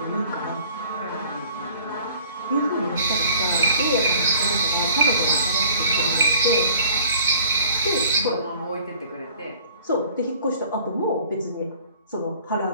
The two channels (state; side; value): inverted; both; correlation -0.53